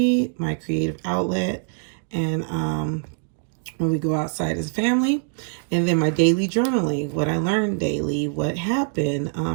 my creative outlet, and when we go outside as a family. And then my daily journaling, what I learned daily, what happened,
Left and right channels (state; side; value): silent; left; 63 dB below the other